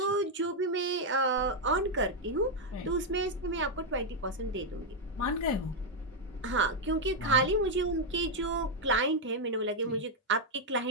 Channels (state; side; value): normal; both; correlation 0.00